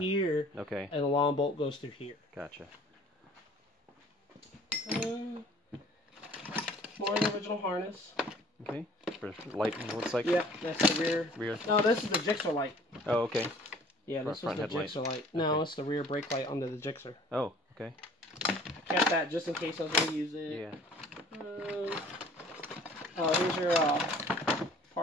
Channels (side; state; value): both; normal; correlation 0.52